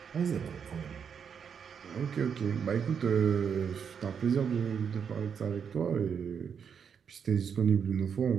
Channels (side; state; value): left; quieter; 7.1 dB